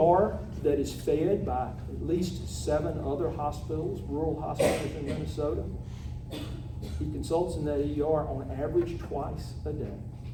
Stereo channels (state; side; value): identical; both; correlation 1.00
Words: that is fed by at least 7 other hospitals, rural hospitals in Minnesota. He consults in that ER on average twice a day.